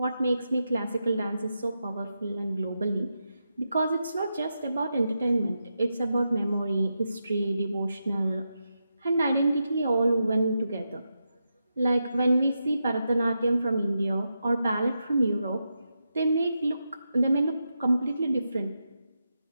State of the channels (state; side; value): inverted; both; correlation -0.87